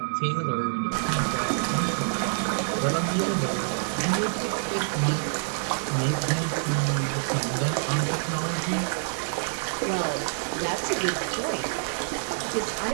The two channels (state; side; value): silent; left; 60 dB below the other